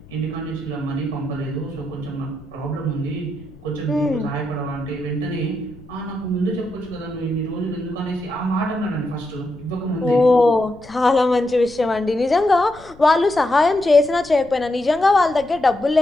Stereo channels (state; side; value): noise; left; rumble, 22 dB below the sound